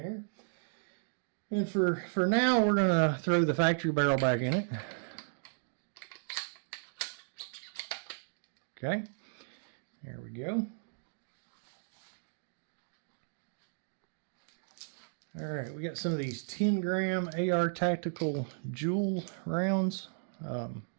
And for now, we're going to throw the factory barrel back in it. Okay, there we go. All right, we got some of these 10-gram AR Tactical Joules rounds.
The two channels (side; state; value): left; silent; digital silence